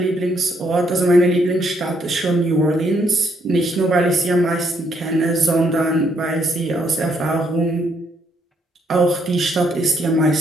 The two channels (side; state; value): both; normal; correlation 0.72